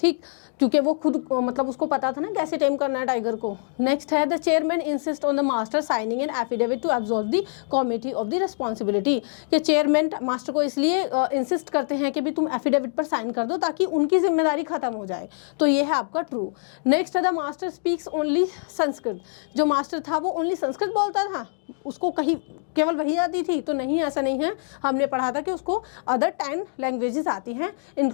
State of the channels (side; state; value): right; silent; digital silence